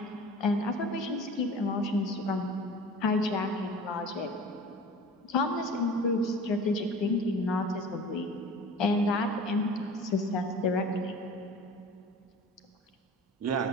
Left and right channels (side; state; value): both; normal; correlation 0.41